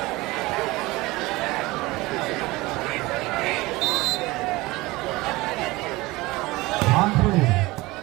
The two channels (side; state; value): left; quieter; 20.9 dB